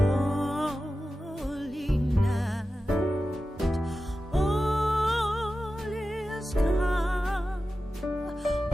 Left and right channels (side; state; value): both; normal; correlation 0.93